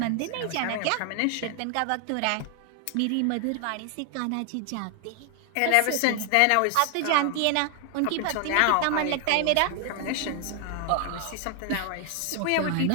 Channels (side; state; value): both; different; correlation 0.00